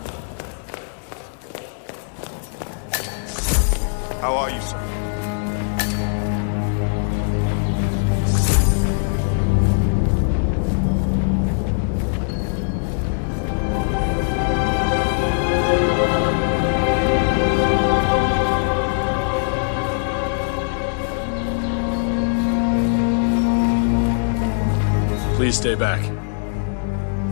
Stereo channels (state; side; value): silent; right; digital silence